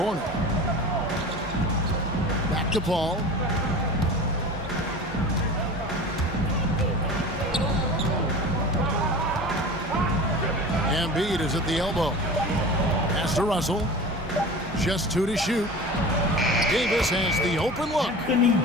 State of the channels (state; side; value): normal; both; correlation 0.35